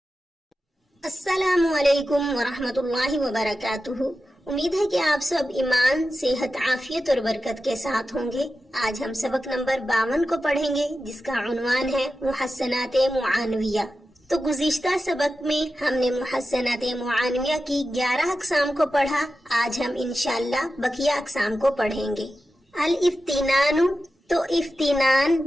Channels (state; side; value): normal; both; correlation 0.92